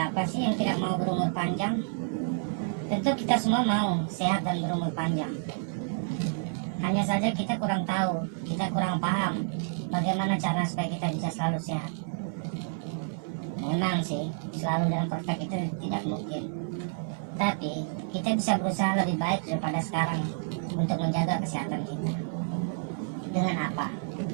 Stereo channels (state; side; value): silent; left; 57 dB below the other